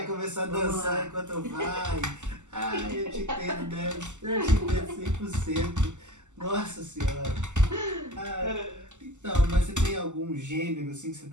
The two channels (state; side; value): late; left; 0.84 ms